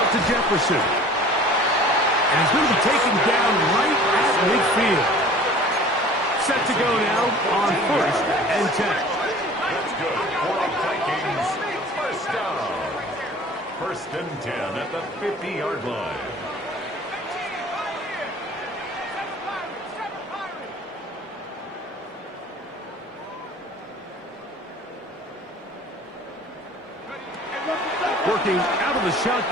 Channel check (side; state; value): both; normal; correlation 0.46